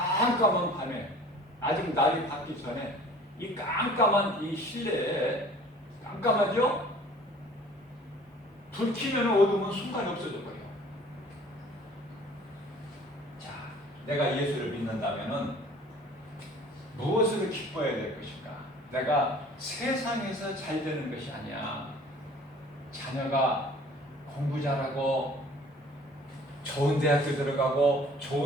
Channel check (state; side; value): normal; both; correlation 0.50